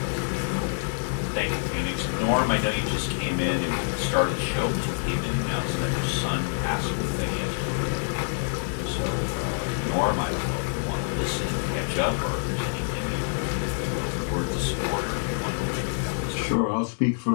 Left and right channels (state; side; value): silent; right; digital silence